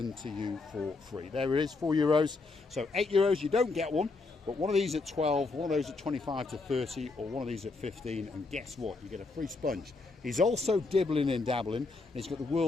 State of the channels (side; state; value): right; quieter; 3.8 dB